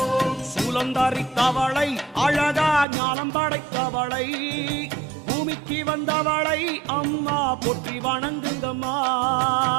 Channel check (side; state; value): left; drops out; at 2.9 s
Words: சூலந்தாரி தவளை அழகா ஞானம் படைத்தவளை பூமிக்கு வந்தவளை அம்மா போற்றி வணங்குங்கம்மா